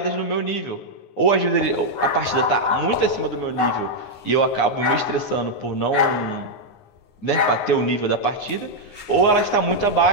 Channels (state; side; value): late; right; 9.7 ms